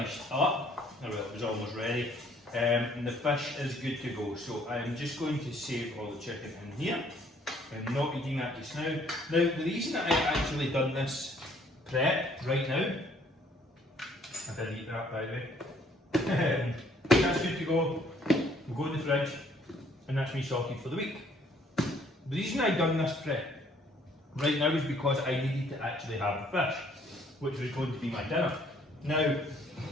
up, well it was almost ready, and the fish is good to go. So I'm just going to save all the chicken in here. I'm not eating that just now. Now the reason that I've actually done this prep right now, I did eat that by the way, that's good to go, we'll go in the fridge, and that's me sorted for the week. The reason I've done this prep right now is because I needed to actually have the fish, which was going to be my dinner. Now,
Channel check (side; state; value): both; normal; correlation 0.62